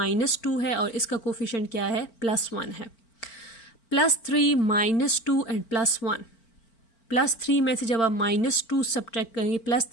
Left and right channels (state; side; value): late; right; 4.4 ms